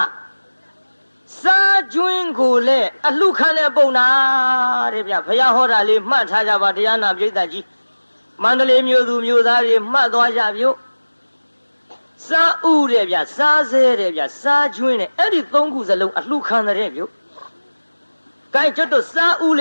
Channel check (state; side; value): inverted; both; correlation -1.00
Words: ာစားကျွင်းကိုလည်းအလှခံတဲ့ပုံနာတဲ့ဗျဘုရားဟောတာလေးမှတ်ထားကြပါတရားနာပိဋကကြီးမန္တလေးမြို့သူမြို့သားတွေမှတ်သွားကြပြုစားဥတဲ့ဗျစားဆဲတဲ့ဗျစားကျွင်းတဲ့အဲ့ဒီ3ခုစလုံးအလှခံတဲ့ပြုကဲကျွတ်တို့စားဥလ